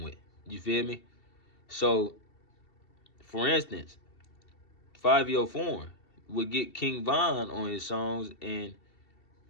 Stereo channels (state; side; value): late; right; 2.7 ms